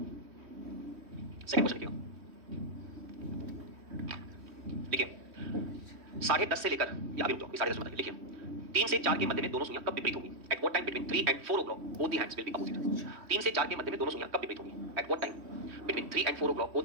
सेकंड क्वेश्चन लिखिए, देखिए 10:30 से लेकर, या अभी रुक जाओ, 10:30 बताइए, लिखिए 3 से 4 के मध्य में दोनों सुइयां कब विपरीत होंगी? Eight what time between 3 and 4 o'clock both the hands will be opposite. 3 से 4 के मध्य में दोनों सुइयां कब विपरीत होंगी? Eight what time between 3 and 4 o'clock both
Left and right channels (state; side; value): late; left; 3.2 ms